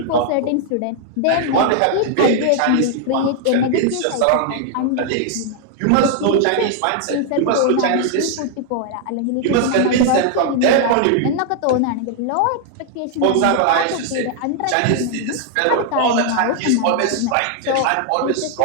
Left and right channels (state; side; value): different; both; correlation 0.00